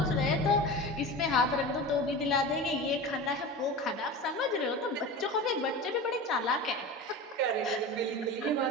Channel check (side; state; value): both; normal; correlation 0.30